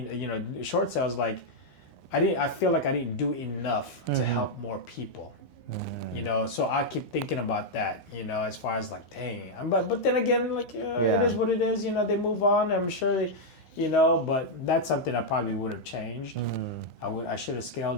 you know, short sales. Like, I feel like I didn't do enough to help more people. You know, so I keep thinking about that. You know, as far as like, dang. But then again, like, it is what it is. You know, they move on. I'm sure they. You know, but that's something I probably would have changed. I should have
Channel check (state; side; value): late; right; 13 ms